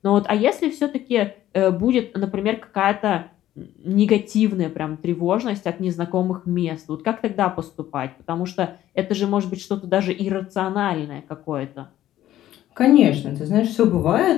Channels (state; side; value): quieter; right; 13.2 dB